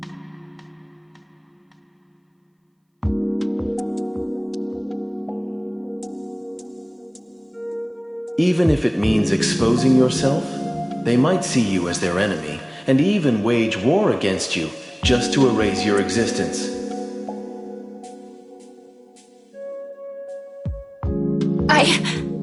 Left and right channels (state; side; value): identical; both; correlation 1.00